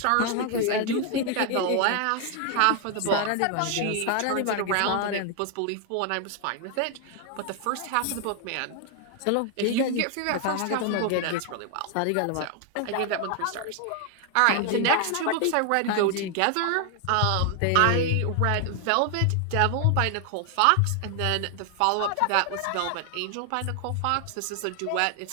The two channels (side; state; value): both; different; correlation 0.00